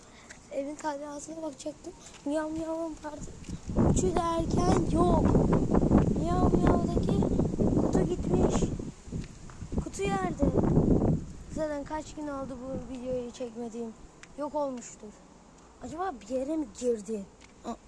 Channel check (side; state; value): both; identical; correlation 1.00